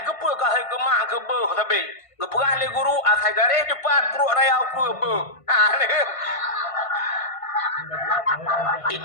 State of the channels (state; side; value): late; right; 1.5 ms